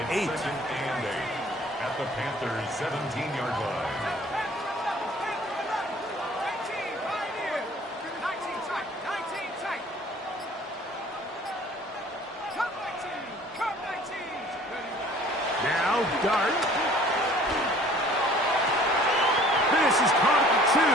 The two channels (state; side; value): normal; both; correlation 0.52